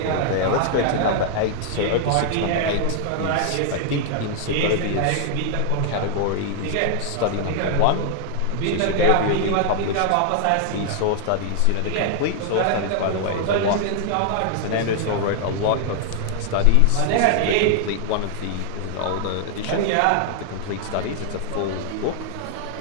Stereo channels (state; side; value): different; both; correlation 0.00